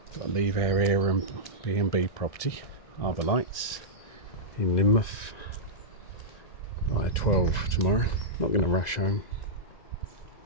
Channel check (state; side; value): late; right; 1.9 ms